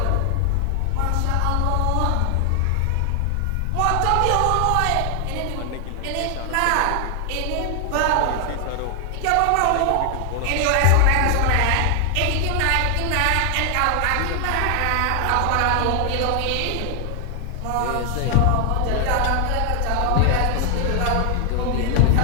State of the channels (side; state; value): both; different; correlation 0.00